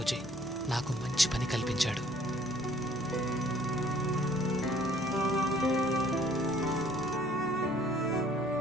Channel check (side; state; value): both; normal; correlation 0.59